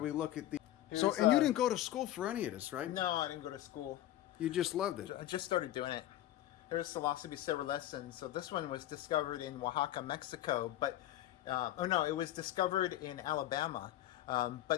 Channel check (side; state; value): right; quieter; 13.6 dB